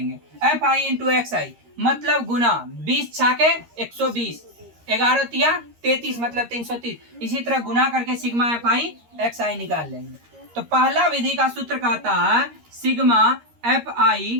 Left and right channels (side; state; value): left; late; 13 ms